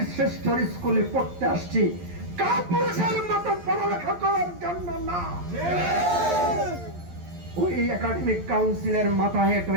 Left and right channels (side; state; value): left; late; 11 ms